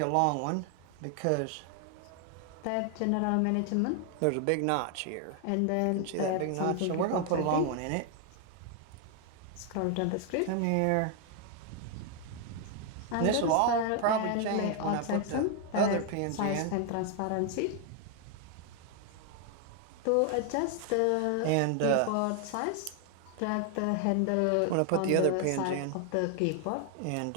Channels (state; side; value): different; both; correlation 0.00